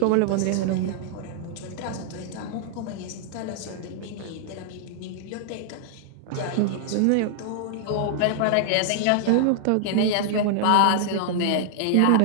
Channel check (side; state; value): both; different; correlation -0.01